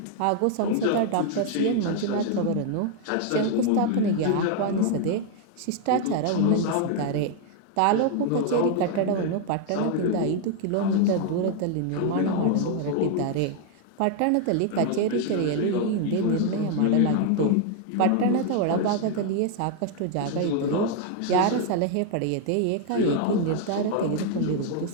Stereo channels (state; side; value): different; both; correlation 0.00